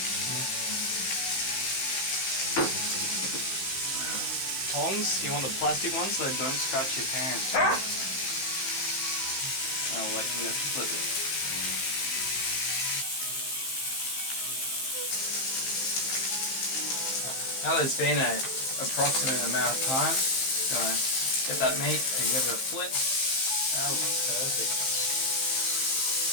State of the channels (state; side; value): late; right; 15 ms